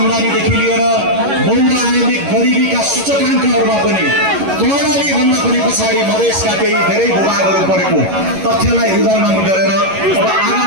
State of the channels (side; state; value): left; late; 11 ms